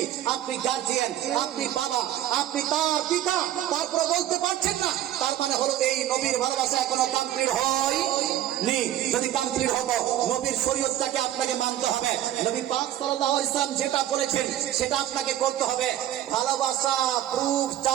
আপনি গার্জিয়ান, আপনি বাবা, আপনি তার পিতা, তারপরে বলতে পারছেন না, তার মানে হলো এই নবীর ভালোবাসা এখনো কমপ্লিট হয়নি। যদি কমপ্লিট হতো, নবীর শরীয়তটাকে আপনাকে মানতে হবে, নবী পাক সাল্লাল্লাহু আলাইহি ওয়াসাল্লাম যেটা বলেছেন সেটা আপনাকে করতে হবে। ভালোবাসা প্রুফ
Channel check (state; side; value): quieter; left; 12.4 dB